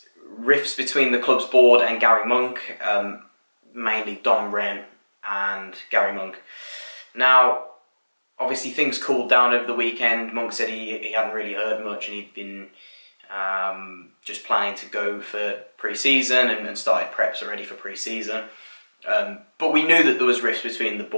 rifts between the club's board and Garry Monk, mainly Dom Wren and Garry Monk. Now, obviously things cooled down over the weekend. Monk said he hadn't really heard much and he'd been just planning to go for pre-season and started preps already for pre-season. But we knew that there was rifts between the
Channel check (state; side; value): inverted; both; correlation -1.00